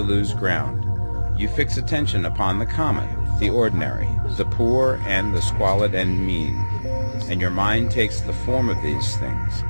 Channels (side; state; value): both; inverted; correlation -1.00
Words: lose ground. You fix attention upon the common, the ordinary, the poor and the squalid and mean, and your mind takes the form of these things.